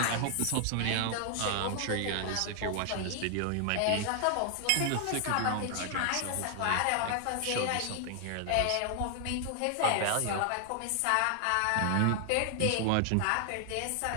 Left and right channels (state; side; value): different; both; correlation 0.00